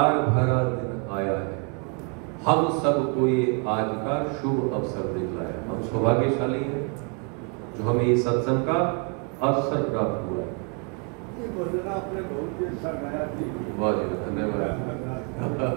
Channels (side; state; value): left; quieter; 37.2 dB